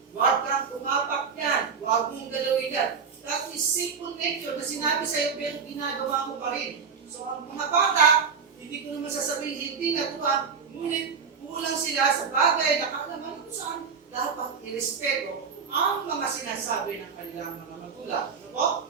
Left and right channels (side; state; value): left; quieter; 6.0 dB